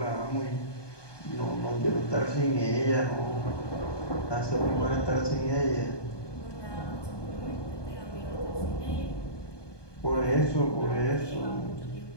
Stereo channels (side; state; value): right; late; 1.2 ms